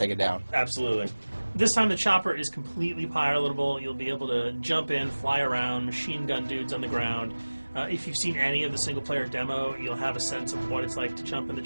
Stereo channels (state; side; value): inverted; both; correlation -1.00